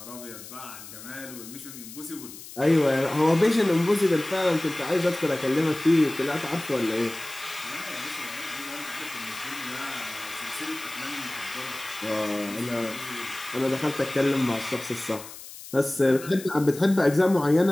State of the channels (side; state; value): left; noise; hiss, 14 dB below the sound